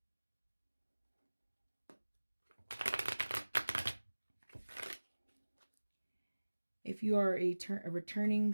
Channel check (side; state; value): both; inverted; correlation -1.00